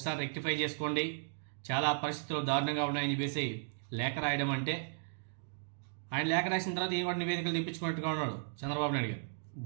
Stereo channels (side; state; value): left; silent; digital silence